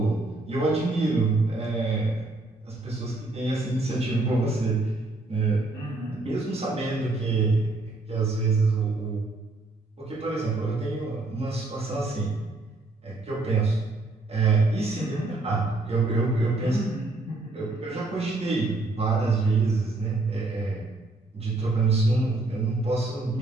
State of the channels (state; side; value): quieter; left; 3.0 dB